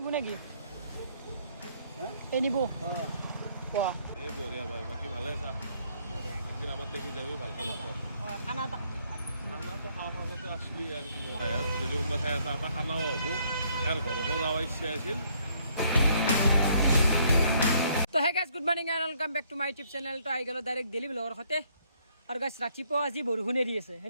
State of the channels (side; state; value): both; inverted; correlation -0.67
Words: lagi. Ini bu. Wah. বঢ়িয়া ভাই বাকি ভালে আছা একদিন আমার দেখি যাবি ভালো খানা তো খানাটো খাওয়ার মাজতে আসলি আর কি যদি কোনোবা ঠাই আছে আমাৰ খানাও হ'ব আৰু ঘৰকো যাব ইচ্ছা আছিল তো hey guys good morning and welcome back to my YouTube channel তো আহি গ'লো ডাইৰেক্ট ডেইলি ব্লগৰ সৈতে আৰু গাইজ ৰাতিপুৱা আজি বৰষুণে দি আছে